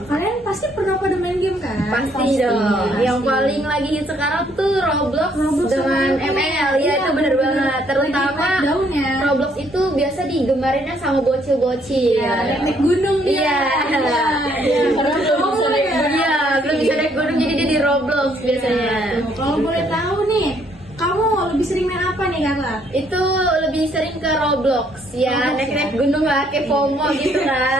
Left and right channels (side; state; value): both; normal; correlation 0.68